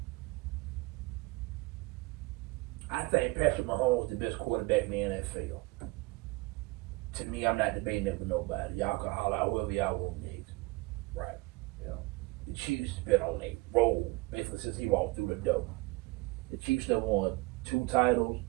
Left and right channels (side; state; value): left; quieter; 23.1 dB